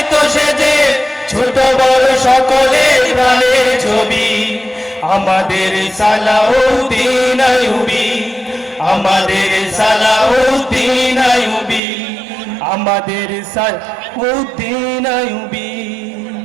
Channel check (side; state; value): left; drops out; at 11.8 s